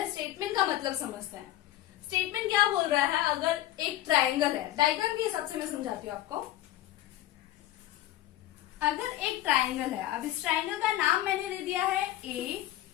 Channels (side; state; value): right; quieter; 14.3 dB